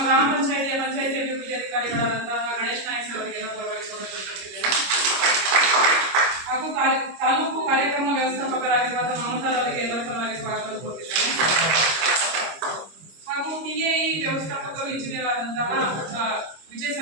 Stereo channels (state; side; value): late; left; 26 ms